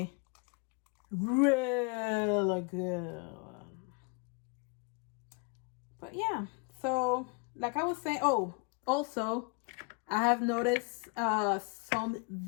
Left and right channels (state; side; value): quieter; right; 32.8 dB